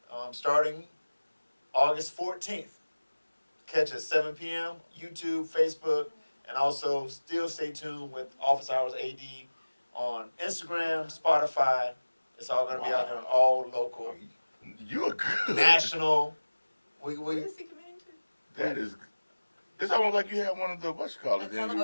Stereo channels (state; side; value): inverted; both; correlation -1.00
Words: starting August 14th. Catch us 7 p.m. YouTube, Facebook, and also still stay tuned with Office Hours AD on Instagram, Spotify. It's all going to be out there on all local, you. You're good. national. What We is he committing to? That is. It's almost like you have one of the what you call it. That's all